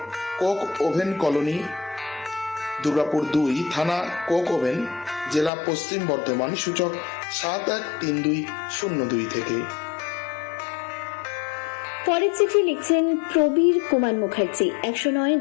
Coke oven colony, Durgapur 2, থানা কোক ওভেন, জেলা পশ্চিম বর্ধমান। সূচক 713202 থেকে। পরের চিঠি লিখছেন প্রবীর কুমার মুখার্জি, 109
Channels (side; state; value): right; drops out; at 5.5 s